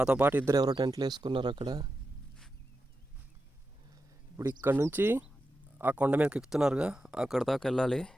పాటు ఇద్దరు ఎవరో టెంట్లు వేసుకున్నారు అక్కడ. ఇప్పుడు ఇక్కడ నుంచి ఆ కొండ మీదకి ఎక్కుతున్నారుగా, అక్కడ దాకా వెళ్ళాలి.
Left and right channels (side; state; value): both; normal; correlation 0.90